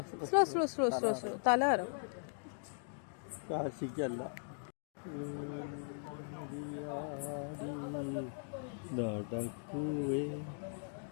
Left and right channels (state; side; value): silent; right; digital silence